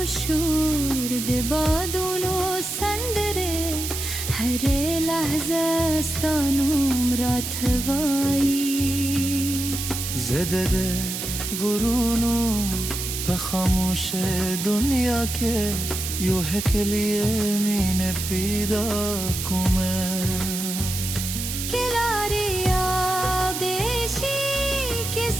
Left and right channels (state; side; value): noise; right; hiss, 5 dB below the sound